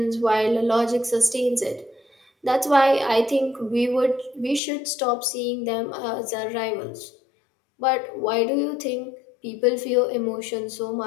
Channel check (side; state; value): right; drops out; at 4.6 s